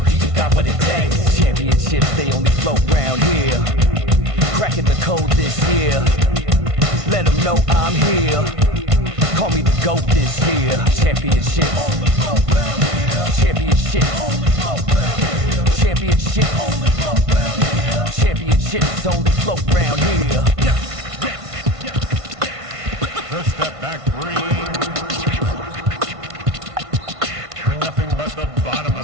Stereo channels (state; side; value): late; left; 1.5 ms